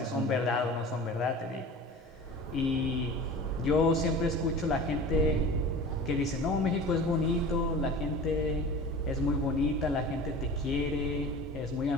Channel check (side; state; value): both; normal; correlation 0.37